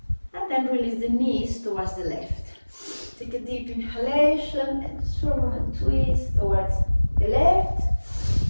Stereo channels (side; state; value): both; inverted; correlation -1.00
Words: And then release the knees towards the left. Take a deep inhalation and just for a moment twist towards the left.